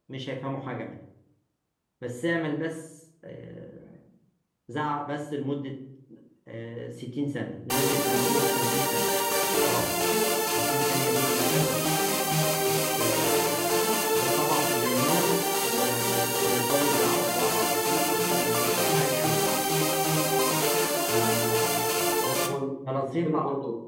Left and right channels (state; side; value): identical; both; correlation 1.00